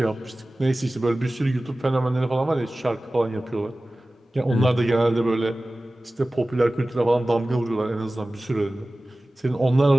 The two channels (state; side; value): normal; both; correlation 0.97